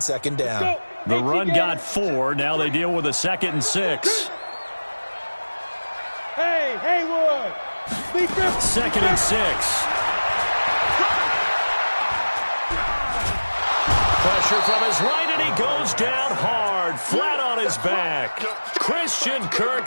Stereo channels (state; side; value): inverted; both; correlation -1.00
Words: down. The run got 4. Now they deal with a 2nd and 6. Hey, Haywood. 2nd and 6. Pressure from his right, and he goes down hard, flat on his back. Christian